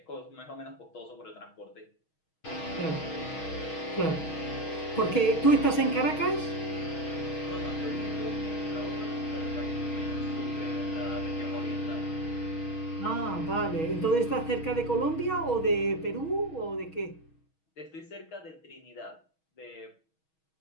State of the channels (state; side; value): late; right; 6.3 ms